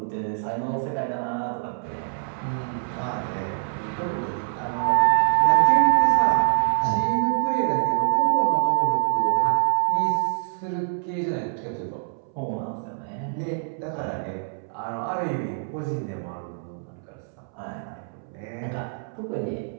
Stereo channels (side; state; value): left; silent; 61 dB below the other